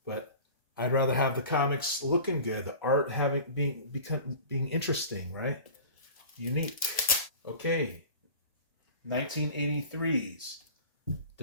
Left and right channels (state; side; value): inverted; both; correlation -0.39